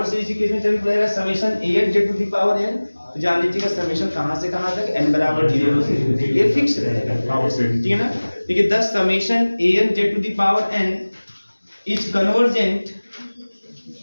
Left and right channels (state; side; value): inverted; both; correlation -1.00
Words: सीरीज के केस में चल पड़ेगा summation an z to the power n, तो जान लीजिएगा समेशन कहां से कहां तक n बराबर 0 से, ये फिक्स रहेगा पावर सीरीज, ठीक है ना। देखिए 10 summation an z to the power n is convergent